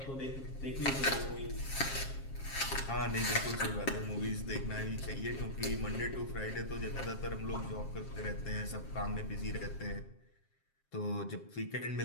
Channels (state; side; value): late; right; 7.4 ms